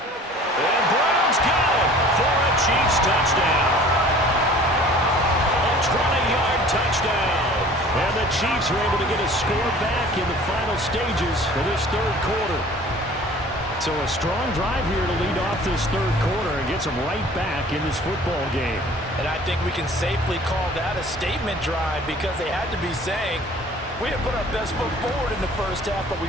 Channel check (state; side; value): normal; both; correlation 0.48